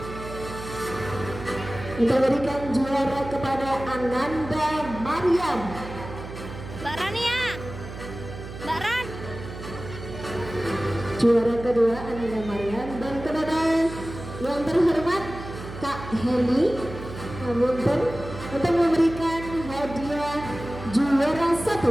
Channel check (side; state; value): right; noise; hum, 11 dB below the sound